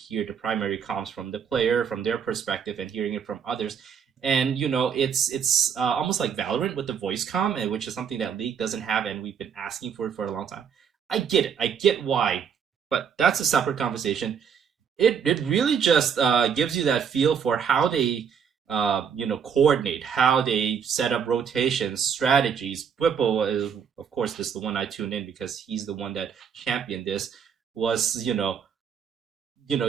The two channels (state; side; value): quieter; left; 7.3 dB